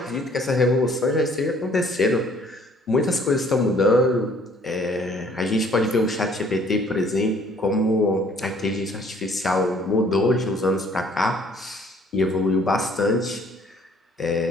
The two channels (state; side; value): normal; both; correlation 0.59